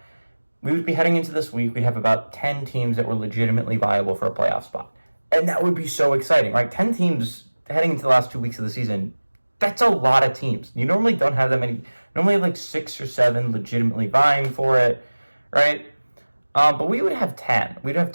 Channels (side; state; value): both; inverted; correlation -1.00